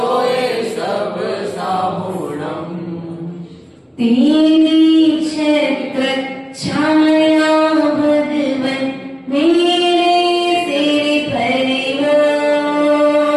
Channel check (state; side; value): identical; both; correlation 1.00